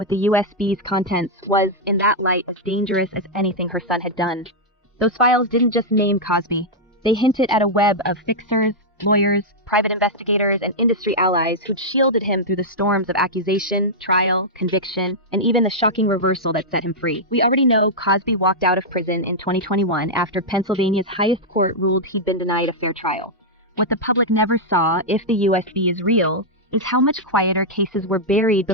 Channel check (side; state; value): both; normal; correlation -0.06